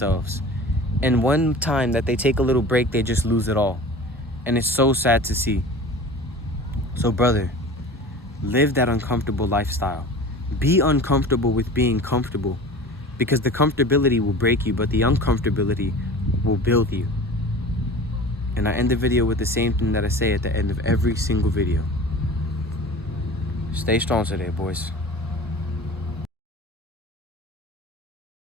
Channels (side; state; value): both; normal; correlation 0.38